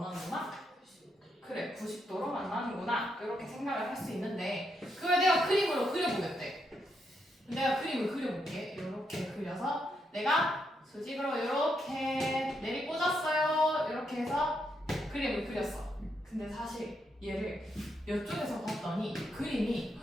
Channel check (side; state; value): both; normal; correlation 0.79